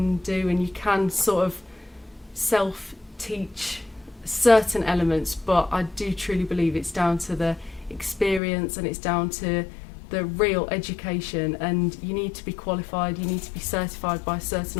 do and you can sort of self-teach certain elements, but I do truly believe it's down to the experience and it's down to the real education, and you need to be qualified, you need to be certified by certain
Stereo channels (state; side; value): drops out; right; at 8.4 s